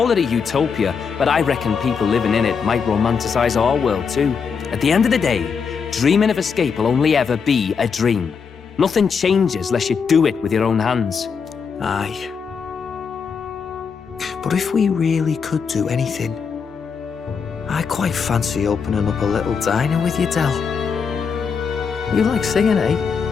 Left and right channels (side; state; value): right; quieter; 6.0 dB